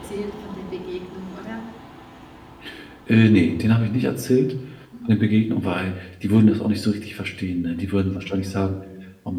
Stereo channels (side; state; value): both; identical; correlation 1.00